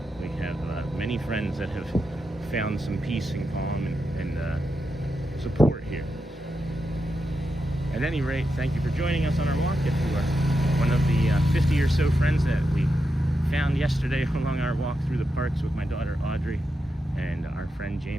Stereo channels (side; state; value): both; normal; correlation 0.87